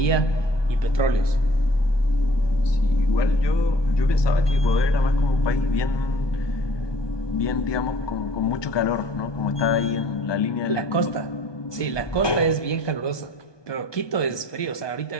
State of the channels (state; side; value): late; right; 1.2 ms